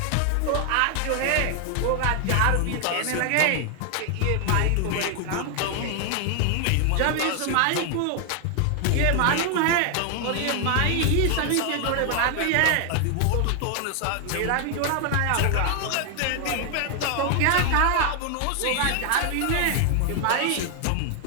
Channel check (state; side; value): different; both; correlation 0.00